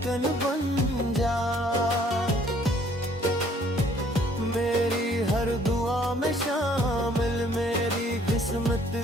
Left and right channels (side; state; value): both; normal; correlation 0.60